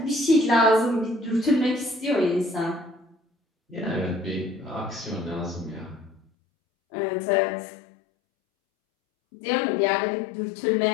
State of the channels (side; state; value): right; drops out; at 6.2 s